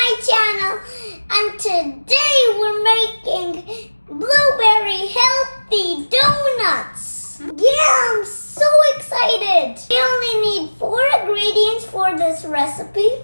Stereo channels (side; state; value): both; inverted; correlation -1.00